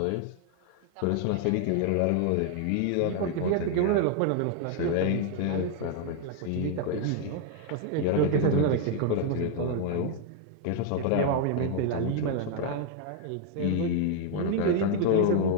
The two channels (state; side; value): different; both; correlation 0.00